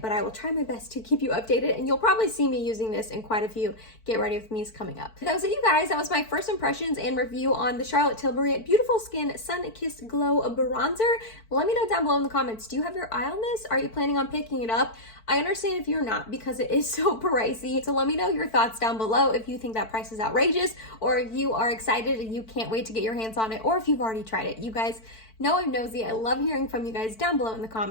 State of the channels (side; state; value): right; late; 4.5 ms